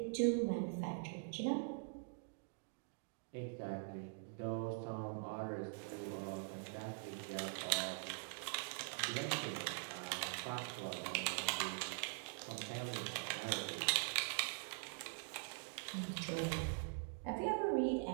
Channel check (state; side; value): silent; left; digital silence